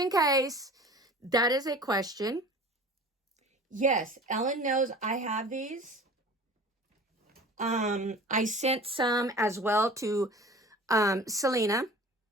case that is a question, yes, Ellen knows I have these. I sent some as well to Selena.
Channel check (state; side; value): normal; both; correlation 0.42